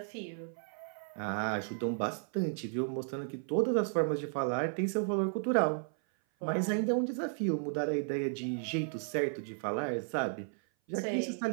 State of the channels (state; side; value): silent; left; 55 dB below the other